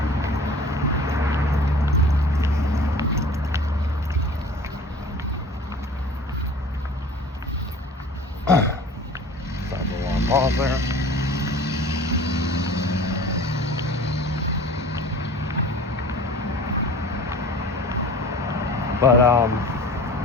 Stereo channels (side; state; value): both; normal; correlation 0.43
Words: Pause there. But